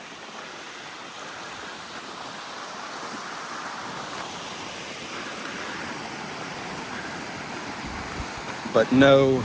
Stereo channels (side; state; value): both; identical; correlation 1.00